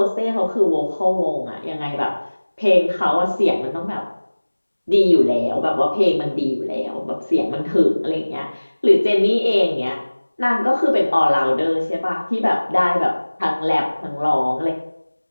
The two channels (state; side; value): inverted; both; correlation -1.00